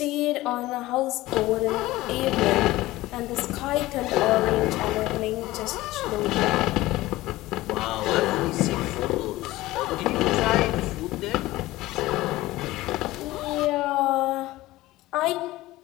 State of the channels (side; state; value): right; quieter; 17.8 dB